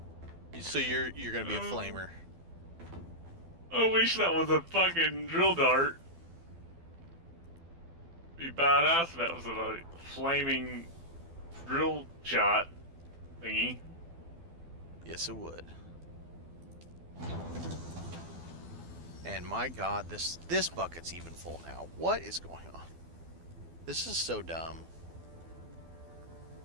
So you're gonna be a flamer. I wish that was a fucking drill dart. Be badass if that was a flaming drill shot thingy. Yes, it would. And my god, this bucket's even full now. What is going on? This is so dumb.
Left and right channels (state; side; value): late; left; 12 ms